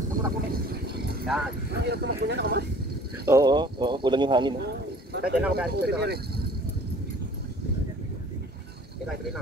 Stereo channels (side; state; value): both; normal; correlation 0.50